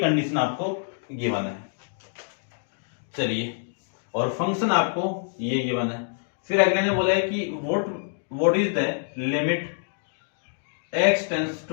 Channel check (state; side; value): silent; right; digital silence